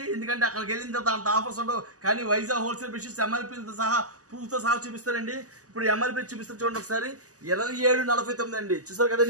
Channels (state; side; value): late; left; 0.66 ms